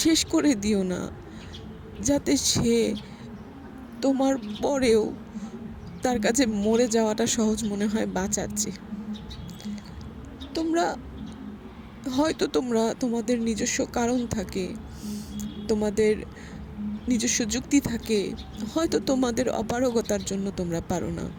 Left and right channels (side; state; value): both; identical; correlation 1.00